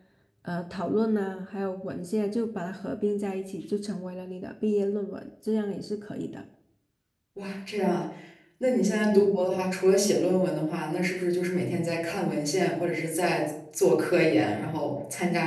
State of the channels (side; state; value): both; identical; correlation 1.00